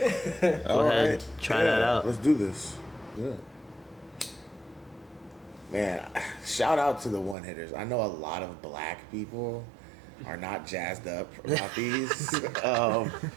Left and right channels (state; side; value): drops out; left; at 7.4 s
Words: Go ahead. Try that out. Let's do this. Yeah. Man, shout out to the one-hitters. I know a lot of black people are not jazzed up about these.